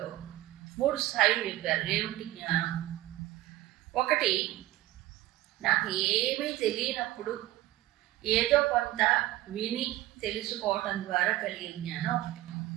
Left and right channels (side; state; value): left; quieter; 15.8 dB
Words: 3 స్థాయిలు చెప్పారు. ఏమిటి జ్ఞానం? ఒకటి, నాకు ఏమీ తెలియనప్పుడు ఏదో కొంత విని తెలుసుకోవటం ద్వారా కలిగే జ్ఞానం ఒకటి.